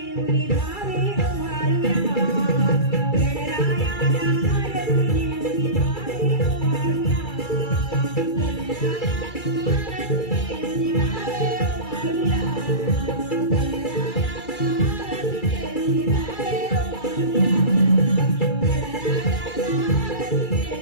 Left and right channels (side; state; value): right; late; 2.3 ms